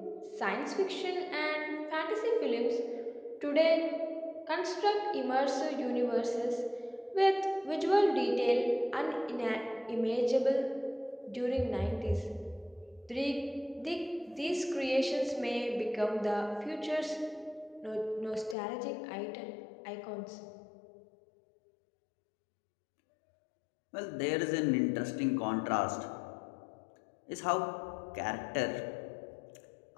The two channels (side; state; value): right; drops out; at 18.6 s